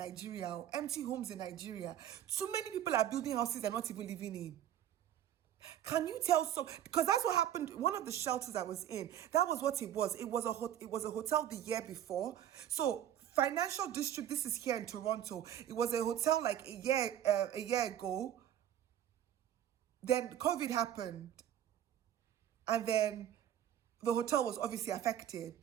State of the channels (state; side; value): quieter; left; 11.1 dB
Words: empty homes in Nigeria. Too many people are building houses they're not even living in. Can you tell because that's what happened. One of the shelters I was in, that was what it was. It was a hotel the year before. So Financial District, this is here in Toronto. It was a hotel like a year ago. Then COVID happened. And then the hotel was obviously